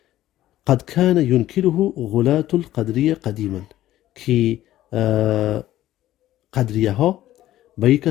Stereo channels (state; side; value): quieter; right; 14.0 dB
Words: قد كان ينكره غلاة القدرية قديما، که قدریه ها به یک